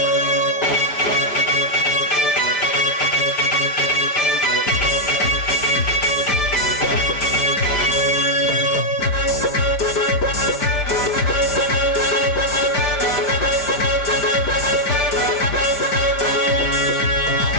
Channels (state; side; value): late; right; 5.0 ms